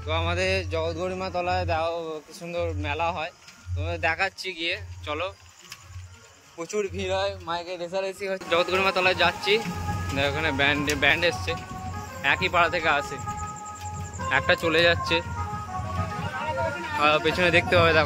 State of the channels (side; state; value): both; identical; correlation 1.00